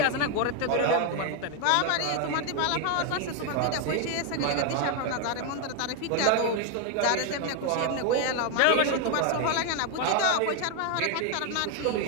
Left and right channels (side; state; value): both; different; correlation 0.01